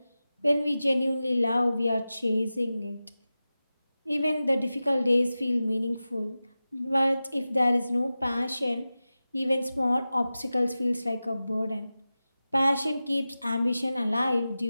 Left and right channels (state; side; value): inverted; both; correlation -0.95